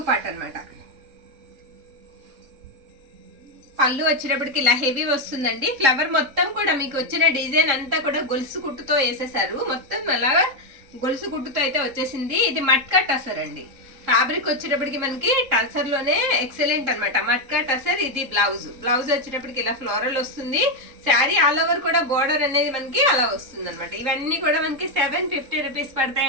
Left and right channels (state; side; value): late; left; 3.7 ms